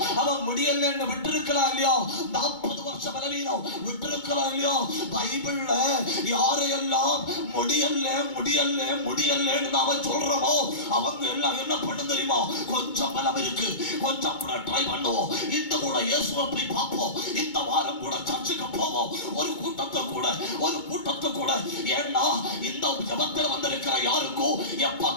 அவன் முடியலன்னு விட்டிருக்கலாம் இல்லையா? 40 வருஷம் பலவீனம் விட்டிருக்கலாம் இல்லையா? பைபிள்ல யாரையெல்லாம் முடியல முடியல முடியலன்னு நாம சொல்றோமோ அவங்க எல்லாம் என்ன பண்ண தெரியுமா? கொஞ்சம் பலம் இருக்கு, கொஞ்சம் கூட ட்ரை பண்ணுவோம், இந்த கூட இயேசுவை போய் பார்ப்போம், இந்த வாரம் கூட சர்ச்சுக்கு போவோம், ஒரு கூட்டத்தை கூட ஏன்னா இந்த ஜபத்தில் வந்திருக்கிற யாருக்கும் எப்ப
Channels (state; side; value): late; right; 2.2 ms